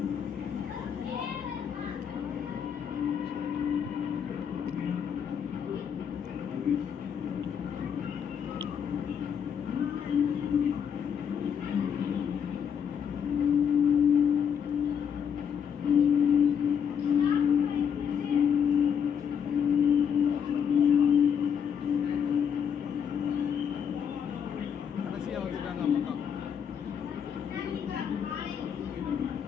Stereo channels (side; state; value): right; quieter; 7.7 dB